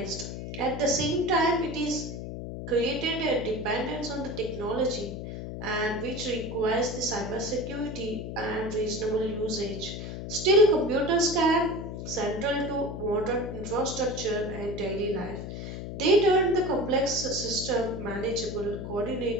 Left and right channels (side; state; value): left; noise; hum, 7 dB below the sound